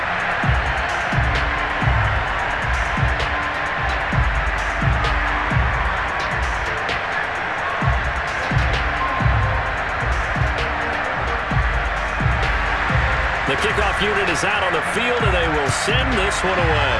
The kickoff unit is out on the field, and they will send this one away.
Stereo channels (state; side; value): identical; both; correlation 1.00